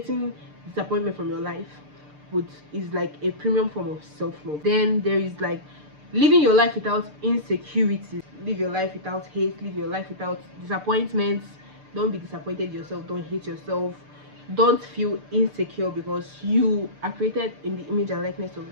disappointment from your life would is like a premium form of self-love. Then there is like living your life without insecurities. Live your life without hate. Live your life without disappointments. Don't be disappointed yourself. Don't hate yourself. Don't feel insecure because you are created in the image and likeness of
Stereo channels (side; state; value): left; late; 6.7 ms